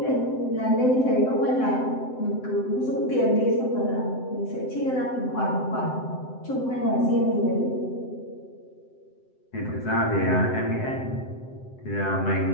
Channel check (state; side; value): late; right; 7.8 ms